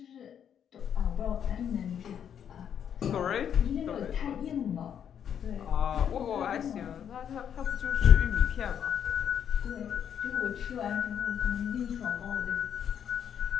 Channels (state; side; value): quieter; right; 8.7 dB